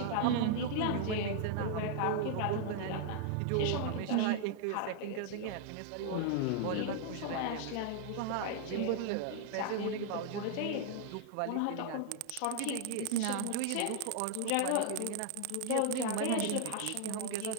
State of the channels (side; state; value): both; different; correlation 0.00